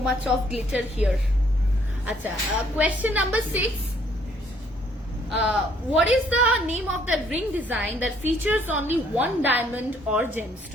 much of glitter here. আচ্ছা question number 6. What is the name of the ring design that features only one diamond or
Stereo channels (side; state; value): both; normal; correlation 0.65